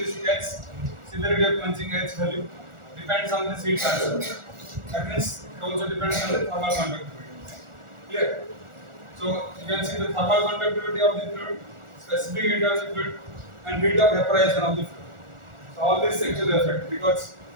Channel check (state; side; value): late; left; 1.4 ms